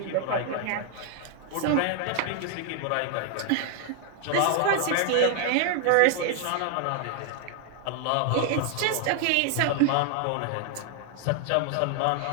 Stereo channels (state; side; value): different; both; correlation 0.00